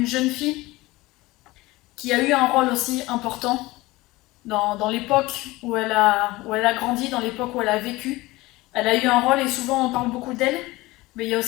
jeune fille qui a eu un rôle aussi important dans l'époque où elle a grandi, dans l'époque où elle a vécu. Elle a eu un rôle et souvent on parle beaucoup d'elle, mais il y a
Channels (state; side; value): quieter; right; 20.1 dB